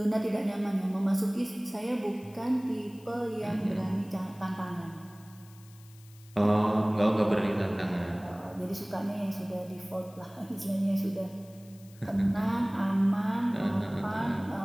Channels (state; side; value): noise; left; hiss, 25 dB below the sound